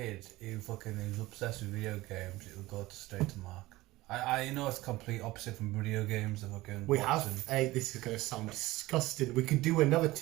who is obsessed with video games, it'll go straight to Mark. I know it's complete opposite from video games and fucking We have. boxing. Hey, this is going to sound disgusting. We could do another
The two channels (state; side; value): quieter; left; 18.7 dB